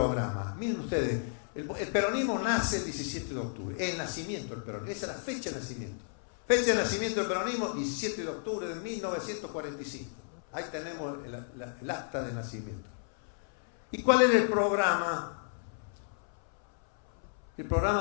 Miren ustedes, el peronismo nace el 17 de octubre, el nacimiento del peronismo, esa es la fecha de nacimiento. Fecha de nacimiento del peronismo, 17 de octubre de 1945. Ahí tenemos el acta de nacimiento. ¿Y cuál era el programa? El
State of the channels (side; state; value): right; silent; 56 dB below the other